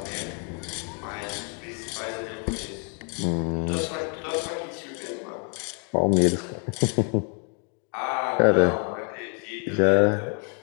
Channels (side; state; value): right; quieter; 39.5 dB